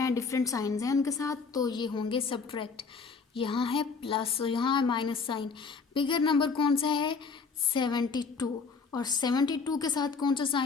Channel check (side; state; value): right; quieter; 5.0 dB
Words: डिफरेंट साइंस हैं उनके साथ, तो ये होंगे सब्ट्रैक्ट। यहाँ है प्लस और यहाँ है माइनस साइन। बिगर नंबर कौन सा है? 72, और 72 के साथ कौन सा